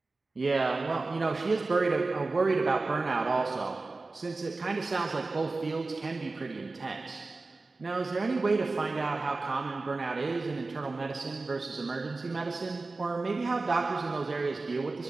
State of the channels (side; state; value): left; quieter; 3.5 dB